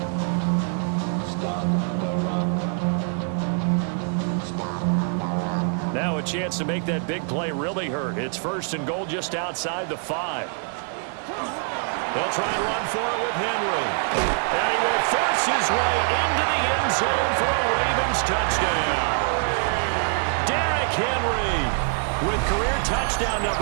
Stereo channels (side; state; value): left; silent; 55 dB below the other